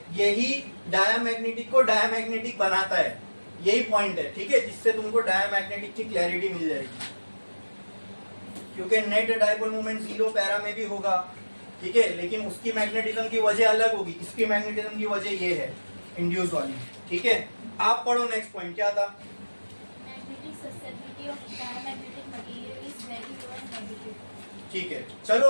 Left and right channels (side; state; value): both; inverted; correlation -1.00